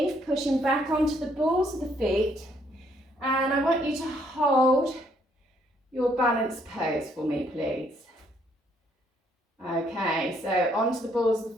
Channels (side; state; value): both; normal; correlation 0.68